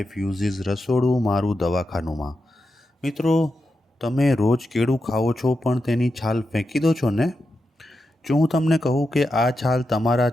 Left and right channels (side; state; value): both; normal; correlation 0.88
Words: યુઝિસ રસોડું મારું દવાખાનુંમાં. મિત્રો, તમે રોજ કેળું ખાઓ છો પણ તેની છાલ ફેંકી દો છો ને? જો હું તમને કહું કે આ છાલ તમારા